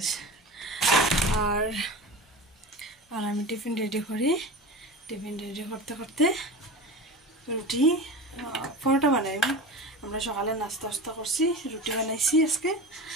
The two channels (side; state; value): both; normal; correlation 0.31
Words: আর আর আমি টিফিন রেডি করি, টিফিন রেডি করতে করতে রুটি পরোটা বানাই। আমরা সকালে নাস্তা টাস্তা করছি, রুটি বানাইছি আজকে।